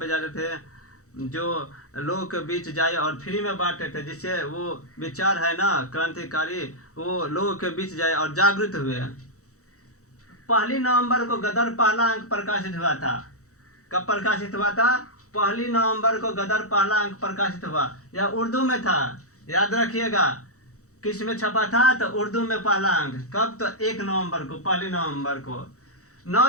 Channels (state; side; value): late; right; 0.65 ms